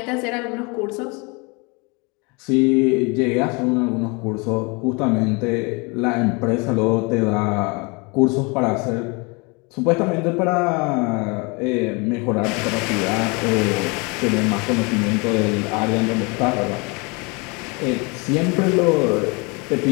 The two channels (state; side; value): quieter; right; 29.7 dB